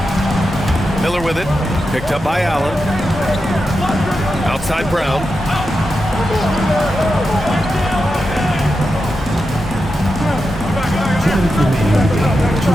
Miller with it. Picked up by Allen. Outside Brown.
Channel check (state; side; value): normal; both; correlation 0.89